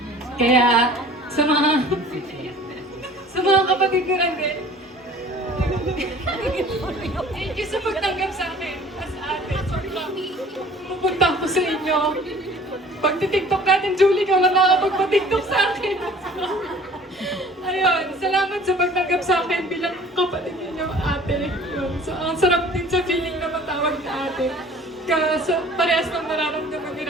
Kaya sa mga kapatid ko lang din. Thank you sa pagtanggap sa akin as ate. Sobrang pupunta ko sa inyo. Pag titiktok natin, Julie, ka lang nakapagpa-tiktok sa akin. Ayun, salamat sa pagtanggap sa akin bilang kapatid ninyo, ate. Yun. So, ang sarap din sa feeling na matawag na ate. Parehas ng nararamdaman ni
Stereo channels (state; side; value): normal; both; correlation 0.48